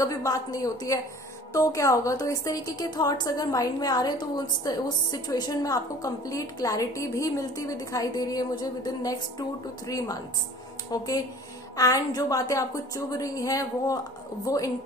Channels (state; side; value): normal; both; correlation 0.47